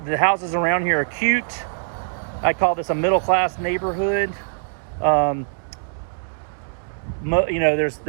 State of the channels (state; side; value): silent; left; digital silence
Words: the houses around here are cute. I call this a middle-class neighborhood. You know,